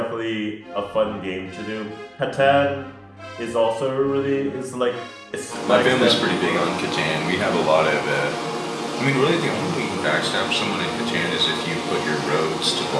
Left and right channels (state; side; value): identical; both; correlation 1.00